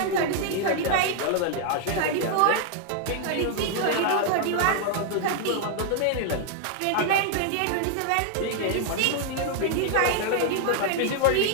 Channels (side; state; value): both; different; correlation 0.00